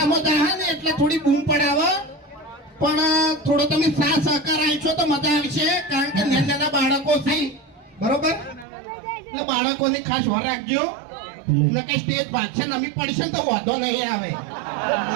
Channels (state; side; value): drops out; left; at 8.7 s